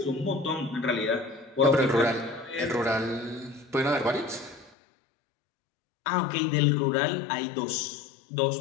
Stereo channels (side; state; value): right; drops out; at 4.8 s